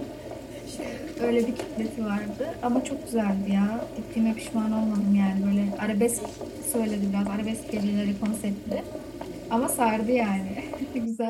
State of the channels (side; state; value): both; identical; correlation 1.00